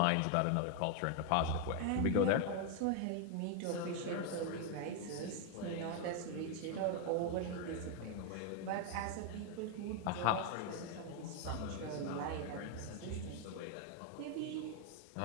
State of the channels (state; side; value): different; both; correlation 0.01